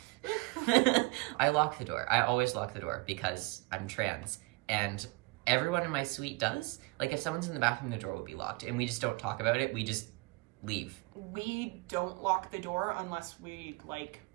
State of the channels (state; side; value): quieter; left; 25.1 dB